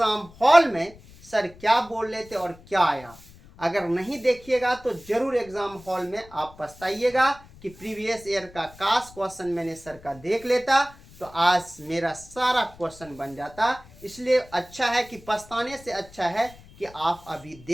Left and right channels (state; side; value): noise; left; rumble, 22 dB below the sound